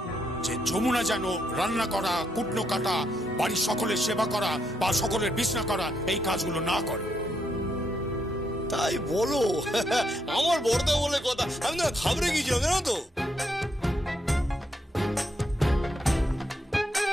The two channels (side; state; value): both; normal; correlation 0.78